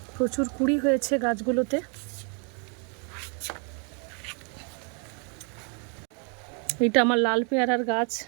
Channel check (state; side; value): quieter; left; 38.7 dB